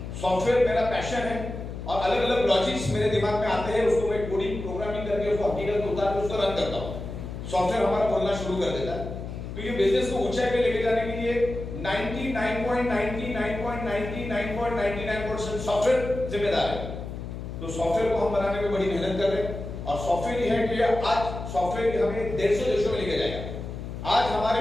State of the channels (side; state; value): left; noise; hum, 8 dB below the sound